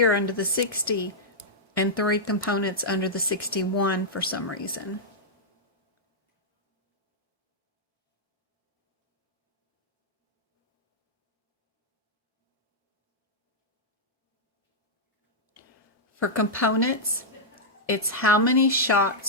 under the 60 and 3 components under the 61 for some reason? For components, it's how many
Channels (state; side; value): normal; both; correlation -0.08